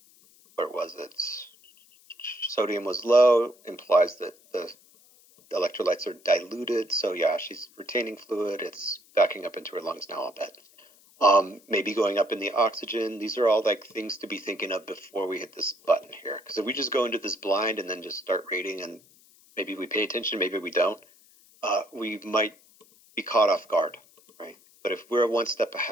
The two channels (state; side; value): noise; left; hiss, 28 dB below the sound